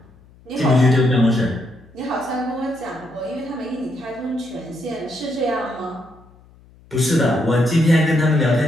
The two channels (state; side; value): noise; left; hum, 27 dB below the sound